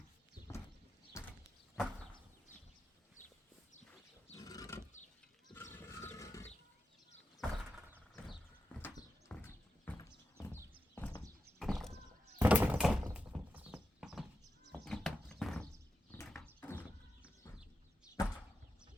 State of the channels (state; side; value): normal; both; correlation 0.88